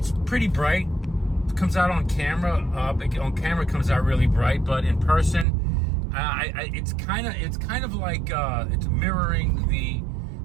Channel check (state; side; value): drops out; left; at 5.5 s